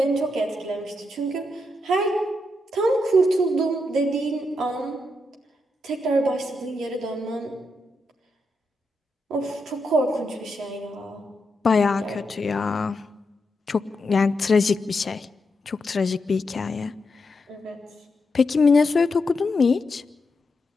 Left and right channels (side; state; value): both; normal; correlation 0.84